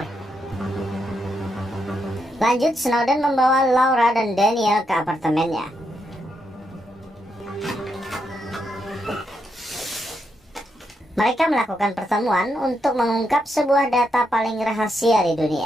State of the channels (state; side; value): normal; both; correlation 0.81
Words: Lanjut, Snowden membawa Laura dan Daniel ke apartemennya. Mereka melakukan pertemuan untuk mengungkap sebuah data paling rahasia di